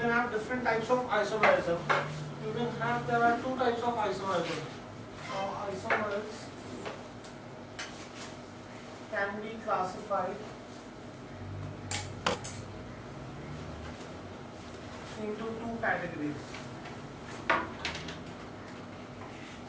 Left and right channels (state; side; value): identical; both; correlation 1.00